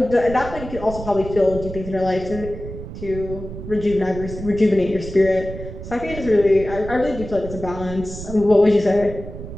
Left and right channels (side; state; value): right; noise; rumble, 11 dB below the sound